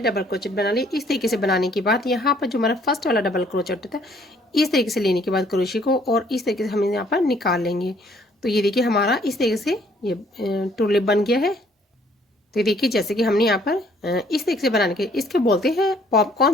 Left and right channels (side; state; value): both; normal; correlation 0.62